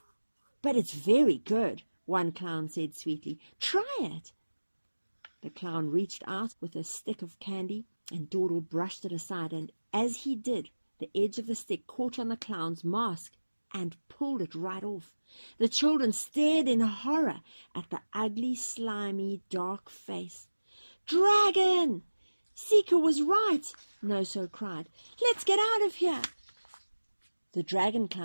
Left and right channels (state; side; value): inverted; both; correlation -1.00